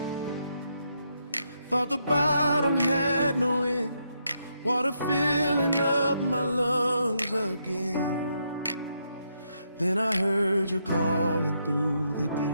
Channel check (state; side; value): inverted; both; correlation -0.79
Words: thought the bottom had no end. Water filling up my lungs again. Then I heard you calling through the